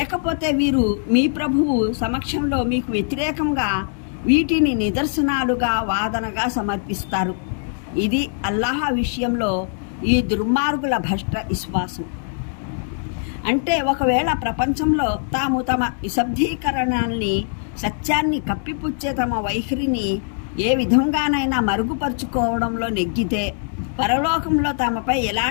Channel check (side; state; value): right; silent; digital silence